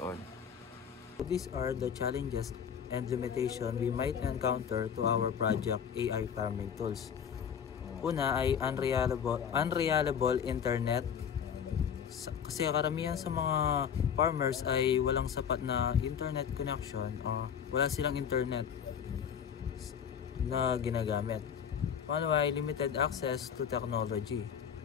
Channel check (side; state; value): right; quieter; 7.9 dB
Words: These are the challenges and limitations we might encounter to our project AI farming tools. Una ay unreliable internet. Kasi karamihan sa mga farmers ay walang sapat na internet connection o wala silang internet na ginagamit. Pangalawa ay limited access to technology.